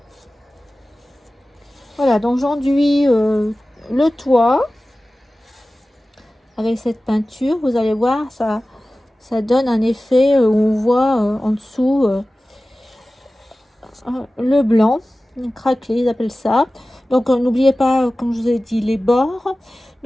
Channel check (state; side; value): normal; both; correlation 0.96